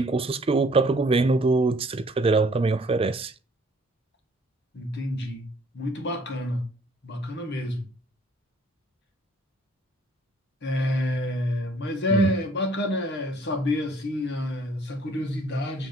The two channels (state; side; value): normal; both; correlation 0.59